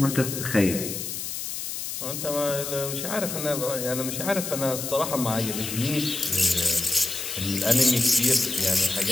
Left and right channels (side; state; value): left; noise; hiss, 5 dB below the sound